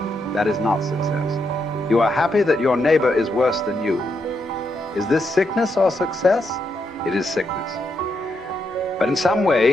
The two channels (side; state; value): both; normal; correlation 0.81